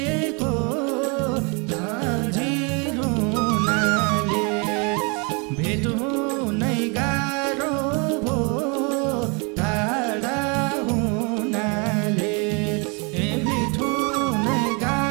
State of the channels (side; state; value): left; quieter; 32.7 dB